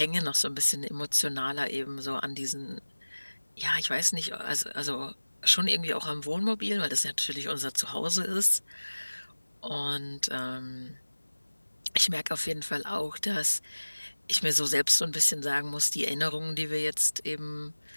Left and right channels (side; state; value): both; inverted; correlation -1.00